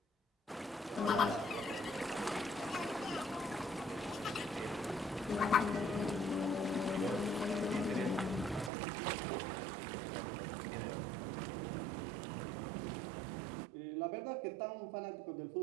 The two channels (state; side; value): drops out; left; at 8.7 s